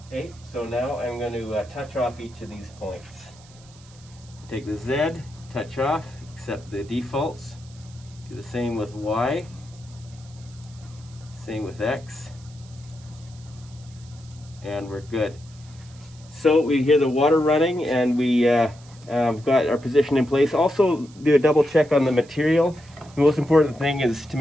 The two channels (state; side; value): noise; right; hiss, 25 dB below the sound